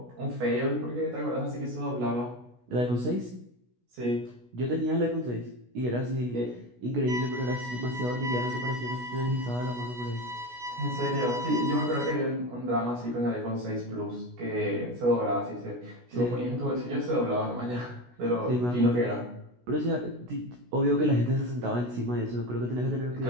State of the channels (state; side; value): late; left; 16 ms